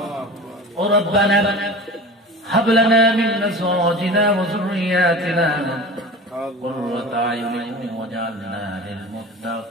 ربنا هب لنا من أزواجنا وذرياتنا قرة أعين واجعلنا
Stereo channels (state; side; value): normal; both; correlation 0.35